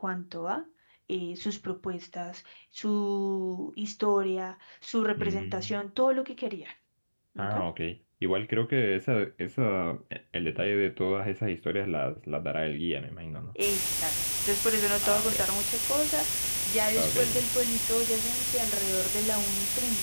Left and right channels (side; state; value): both; inverted; correlation -1.00